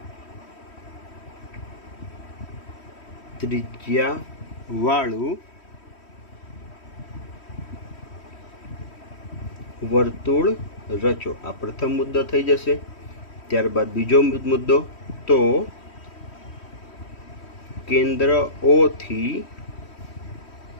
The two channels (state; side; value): late; right; 3.1 ms